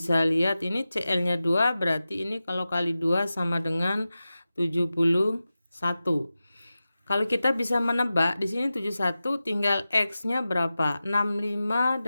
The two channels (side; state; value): both; inverted; correlation -0.94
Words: lihat ini Cl-nya 2, berarti ini kalau kali 2 sama dengan 71. Kalau kita bisa menebak di sini 71 tinggal X-nya berapa? 65